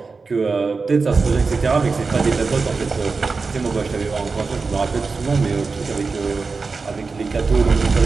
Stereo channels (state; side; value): quieter; left; 4.4 dB